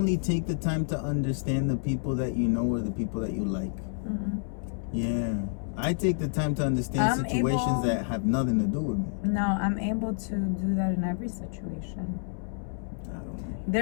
take the time to understand the people that you know or the people that you like. Mm-mm. Yeah. I take the time to understand situations that have nothing to do with me. No, I'm able to do that in every situation. I don't know.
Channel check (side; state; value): right; silent; 59 dB below the other